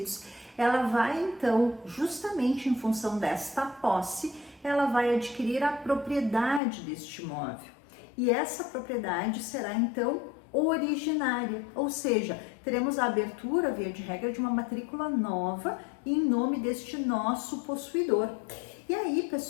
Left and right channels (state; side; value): drops out; right; at 6.6 s